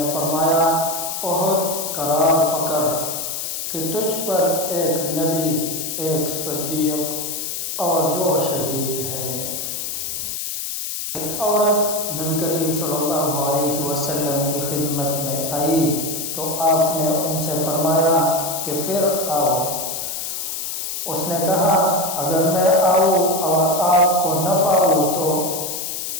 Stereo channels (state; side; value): noise; left; hiss, 4 dB below the sound